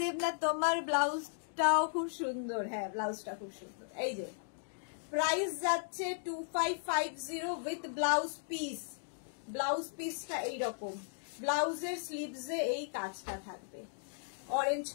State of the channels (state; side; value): silent; right; digital silence